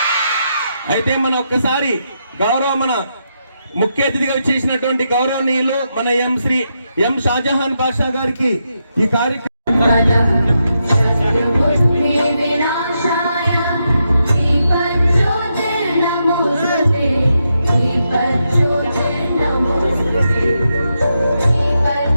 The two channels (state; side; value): inverted; both; correlation -0.83